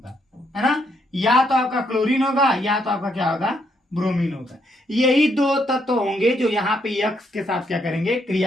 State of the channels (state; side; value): normal; both; correlation 0.75